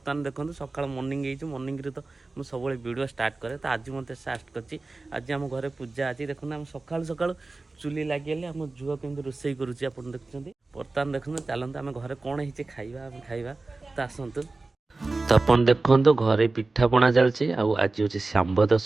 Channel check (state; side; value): quieter; left; 3.4 dB